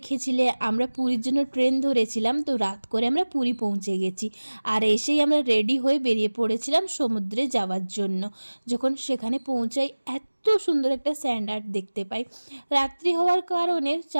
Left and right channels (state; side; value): inverted; both; correlation -1.00